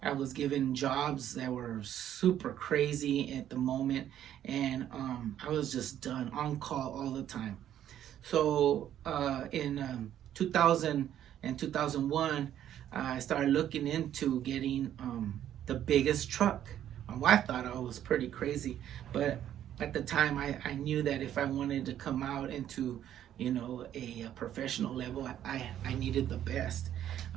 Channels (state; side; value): quieter; left; 11.0 dB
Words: I was given jobs that were super crazy at the moment, and I was just done on call all the time. So in 2000 and 2001, I started looking into getting the biggest truck. My wife thought I was pretty crazy, but at the time I knew that if I wanted to come out into a professional level, I needed the best.